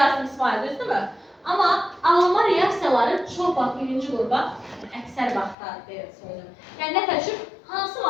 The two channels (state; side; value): drops out; right; at 5.6 s